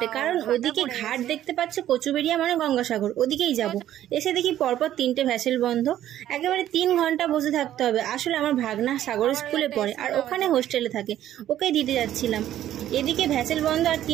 কারণ ওদিকে ঘাট দেখতে পাচ্ছ, কচুবেড়িয়া মানে গঙ্গাসাগর, ওদিকেই যাব। এসে দেখি পরপর 3টে ভ্যাসেল বন্ধ, একেবারে 3 ঘন্টা বসে থাকতে হবে। আসলে আমার ভাগনা সাগর স্কুলে পড়ে আর ওখানে হোস্টেলে থাকে, ওকে দিতে যাচ্ছিলাম। এদিকে ভ্যাসেল বন্ধ আর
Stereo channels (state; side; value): quieter; left; 12.1 dB